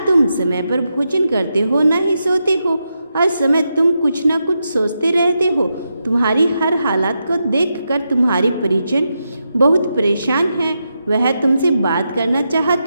तुम समय पर भोजन करते हो ना ही सोते हो, हर समय तुम कुछ ना कुछ सोचते रहते हो। तुम्हारी हर हालत को देखकर तुम्हारी परिजन बहुत परेशान हैं। वह तुमसे बात करना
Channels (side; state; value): both; inverted; correlation -0.86